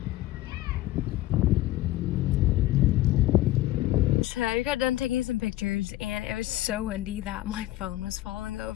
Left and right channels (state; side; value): quieter; right; 15.9 dB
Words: So I got done taking some pictures and it was so windy that my phone was falling